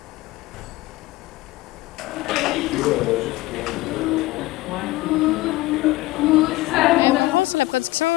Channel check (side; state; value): right; quieter; 18.8 dB